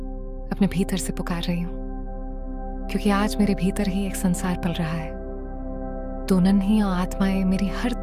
अपने भीतर से पुकार रही हूं, क्योंकि आज मेरे भीतर ही एक संसार पल रहा है। दो नन्ही आत्माएं मेरी हर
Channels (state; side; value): identical; both; correlation 1.00